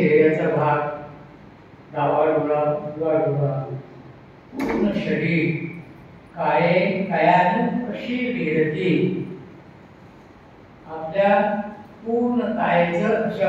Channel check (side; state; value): both; identical; correlation 1.00